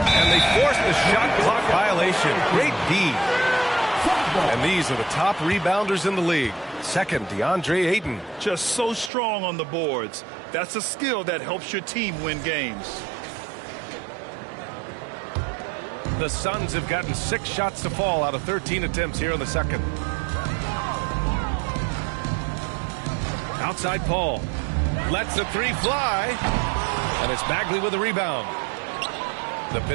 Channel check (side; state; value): left; drops out; at 9.1 s